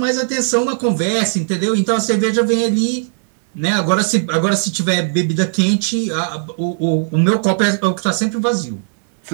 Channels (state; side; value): silent; left; digital silence